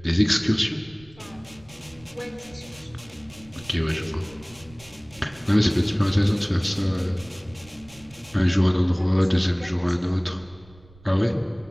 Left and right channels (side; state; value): right; noise; rumble, 24 dB below the sound